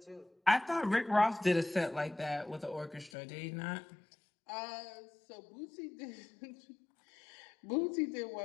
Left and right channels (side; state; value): right; drops out; at 3.1 s